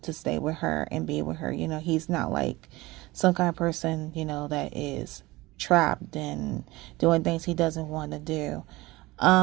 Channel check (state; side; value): quieter; left; 20.6 dB